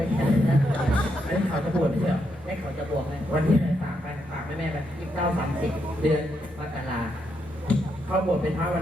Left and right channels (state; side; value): normal; both; correlation 0.80